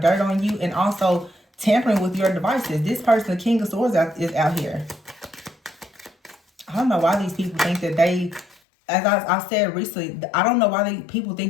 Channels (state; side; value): drops out; right; at 8.6 s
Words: dirt on you, and also tampering with your devices. This person, the King of Swords, is out here. I don't know why these people think that they, as I said recently, I don't know why people